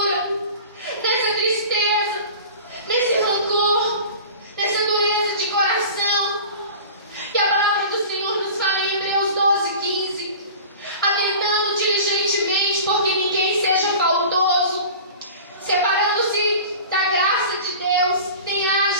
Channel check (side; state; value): both; inverted; correlation -0.38